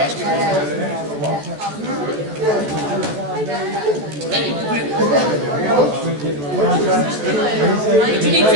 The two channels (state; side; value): late; left; 14 ms